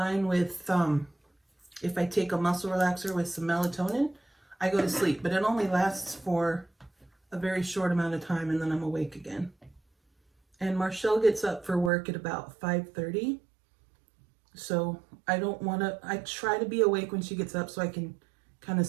with, if I take a muscle relaxer with some melatonin, I go to sleep, but it only lasts for a very short amount of time and then I'm awake again. And Marchelle gets up for work at about 5:30. So I try to be awake when she gets up so I can kind of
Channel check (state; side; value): drops out; left; at 11.9 s